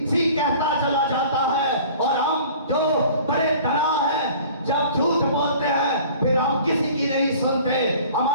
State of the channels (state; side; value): inverted; both; correlation -0.47